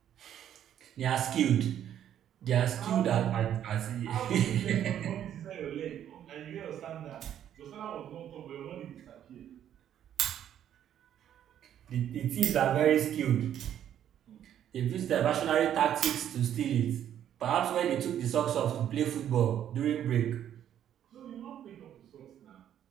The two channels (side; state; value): left; quieter; 10.4 dB